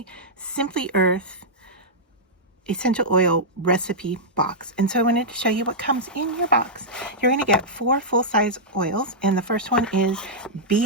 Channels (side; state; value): both; normal; correlation -0.10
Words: Simply Earth Essential Oil Recipe Box. And so I wanted to show you what comes in your box. You're going to get 4 full-size oils, and the first one is